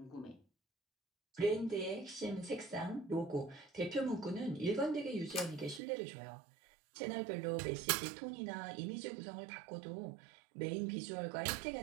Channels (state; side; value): drops out; left; at 5.8 s